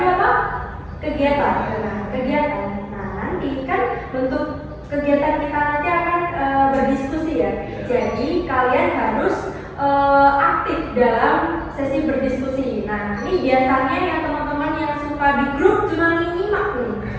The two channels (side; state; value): both; identical; correlation 1.00